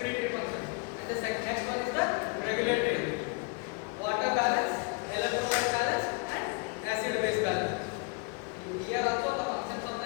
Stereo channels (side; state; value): right; quieter; 31.6 dB